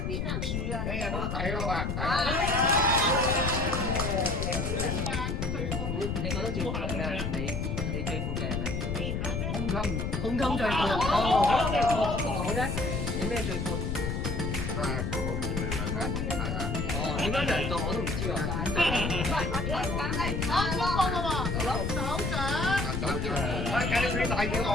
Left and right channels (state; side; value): noise; left; rumble, 1 dB below the sound